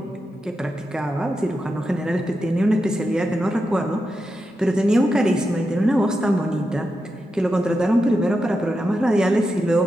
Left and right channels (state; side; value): normal; both; correlation 0.88